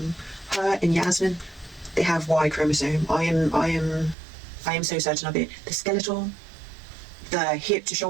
Her and Yasmin, they have Y chromosome. I am so certain of it. The skeletal, the hip to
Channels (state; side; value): drops out; left; at 4.2 s